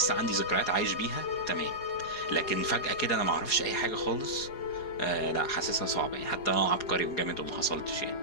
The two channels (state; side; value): late; right; 4.8 ms